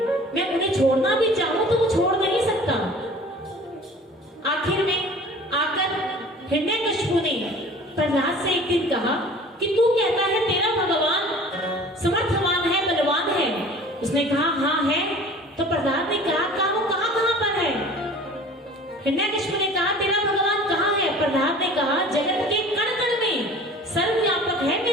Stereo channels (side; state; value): both; normal; correlation 0.45